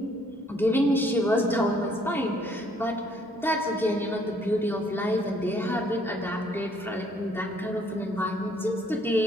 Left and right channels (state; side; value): normal; both; correlation 0.64